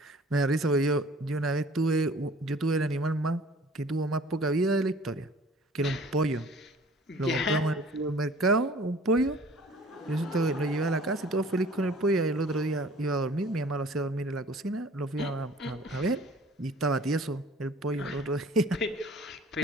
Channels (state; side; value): normal; both; correlation 0.50